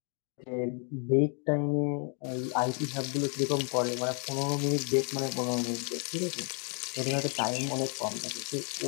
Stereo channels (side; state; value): right; quieter; 38.6 dB